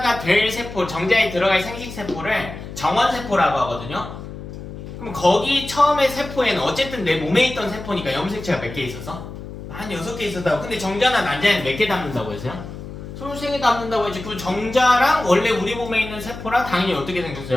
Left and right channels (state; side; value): noise; left; hum, 11 dB below the sound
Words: 될 세포, 정자에 들어갈 생식세포를 정원세포라고 하거든요. 그럼 거기 처음에 세포에는 어쨌든 내 몸에 있던 세포니까 염색체가 몇 개 있었어? 한 6개 있었다고. 근데 정자나 난자에는 몇 개 담는다고 했어요? 23개 담는다고 했지. 그 정자랑 원래 우리 몸에 있는 세포랑 당연히 어떻게